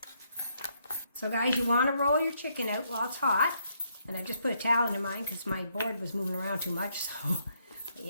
So guys, you want to roll your chicken out while it's hot. And I just put a towel into mine because my board was moving around too much. So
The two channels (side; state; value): both; inverted; correlation -0.74